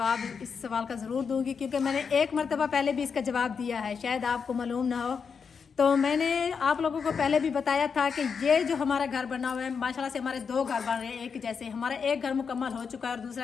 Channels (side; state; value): right; quieter; 6.0 dB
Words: इस सवाल का ज़रूर दूंगी, क्योंकि मैंने एक मरतबा पहले भी इसका जवाब दिया है, शायद आपको मालूम ना हो। तो मैंने आप लोगों को पहले भी बताया था कि ये जो हमारा घर बना हुआ है, माशाल्लाह से हमारे 2 घर बन रहे हैं एक जैसे। हमारा एक घर मुकम्मल हो चुका है और